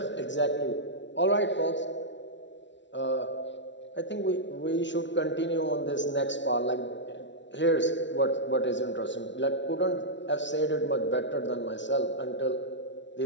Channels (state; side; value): late; right; 0.53 ms